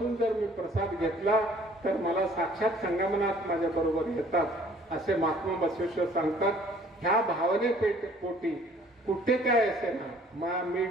जर मी प्रसाद घेतला तर मला साक्षात संगमनात माझ्या बरोबर येतात असे महात्मा बसवेश्वर सांगतात. ह्या भावने पोटी कुठे काय असे ना, मी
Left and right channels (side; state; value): both; normal; correlation 0.56